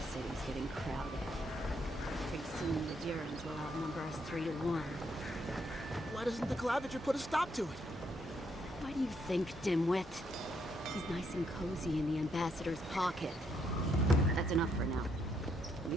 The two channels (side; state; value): both; normal; correlation 0.75